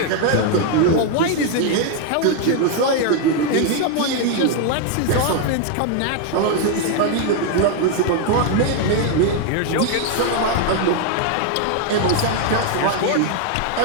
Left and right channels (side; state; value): both; different; correlation 0.01